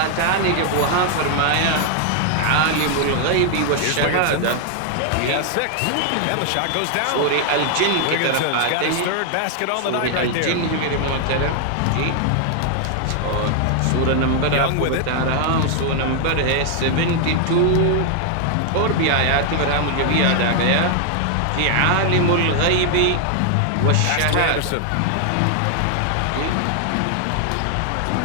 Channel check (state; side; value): different; both; correlation 0.00